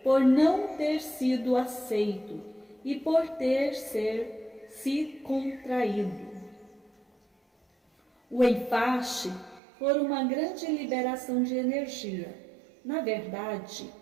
por não ter sido aceito e por ter se contraído. O enfaste foi uma grande liberação de energia. Na verdade,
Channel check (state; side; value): drops out; left; at 9.6 s